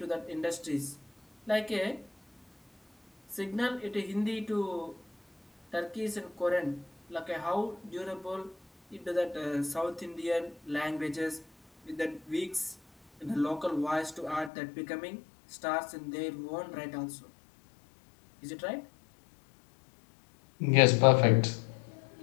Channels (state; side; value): drops out; right; at 14.5 s